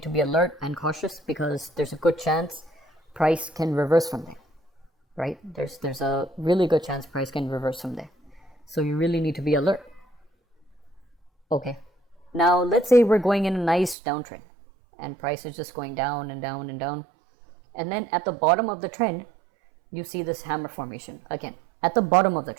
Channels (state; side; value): drops out; left; at 14.0 s